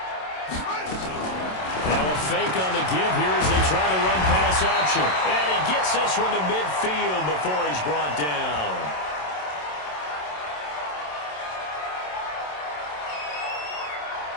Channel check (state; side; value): late; right; 27 ms